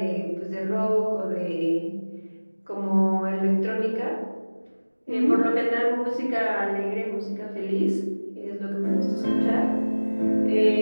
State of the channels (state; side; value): inverted; both; correlation -1.00